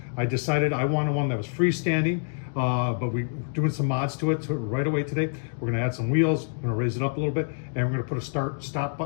I decided I wanted one that was freestanding, but we're doing some mods to it right away today. We're going to add some wheels, we're going to raise it up a little bit, and we're going to put a start-stop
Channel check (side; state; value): right; silent; digital silence